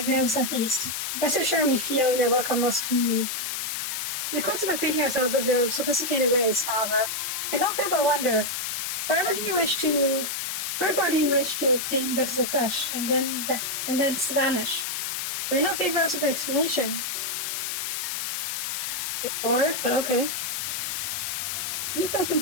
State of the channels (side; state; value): left; noise; hiss, 2 dB below the sound